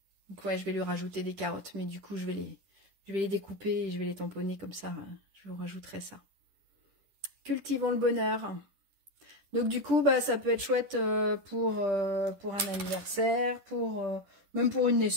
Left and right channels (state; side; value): late; left; 10 ms